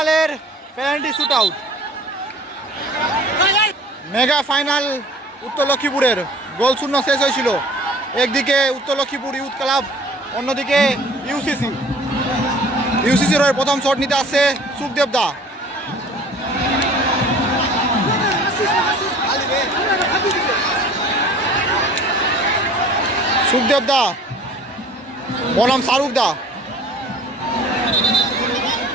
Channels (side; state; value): both; normal; correlation 0.48